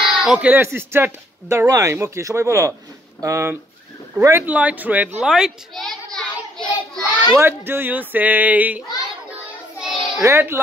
Okay, let's start the rhyme. Okay, সবাই বলো red light, red light. What do you say? Red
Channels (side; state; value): both; normal; correlation 0.67